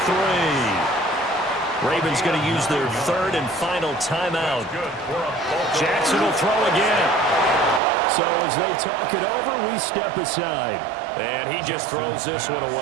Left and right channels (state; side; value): drops out; left; at 7.8 s